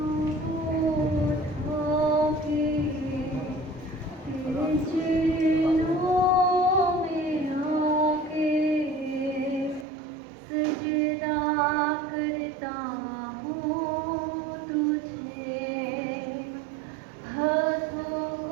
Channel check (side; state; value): left; drops out; at 9.9 s